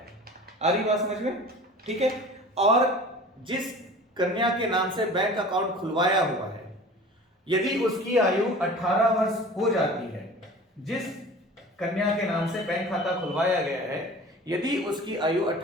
आ रही बात समझ में? ठीक है, और जिस कन्या के नाम से बैंक अकाउंट खुलवाया हुआ है, यदि उसकी आयु 18 वर्ष हो जाती है, जिस कन्या के नाम से बैंक खाता खुलवाया गया है, यदि उसकी आयु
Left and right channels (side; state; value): both; normal; correlation 0.41